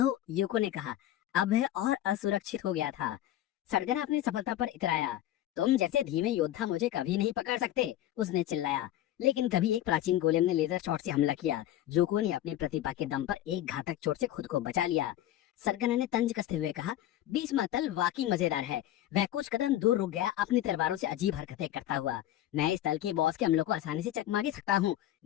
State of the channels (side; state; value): right; quieter; 13.0 dB